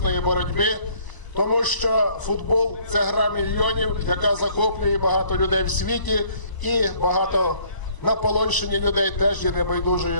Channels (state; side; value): late; right; 1.0 ms